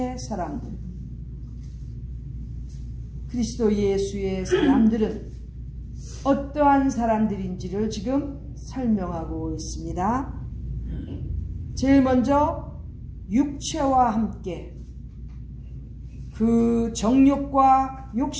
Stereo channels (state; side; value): identical; both; correlation 1.00